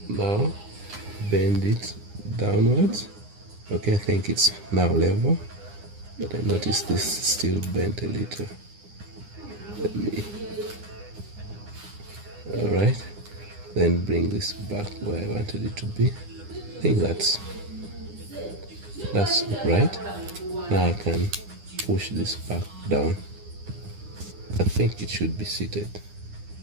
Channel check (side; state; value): left; late; 9.8 ms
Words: Now bend it downwards. Okay, I think it's now level, but I notice this still bent a little. Let me. Alright, then bring this back where I wanted it to be. I think that's right. Now I can push this back down. I think it should be seated.